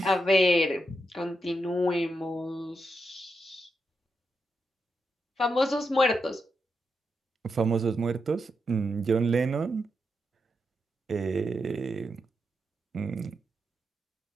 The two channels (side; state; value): both; normal; correlation 0.84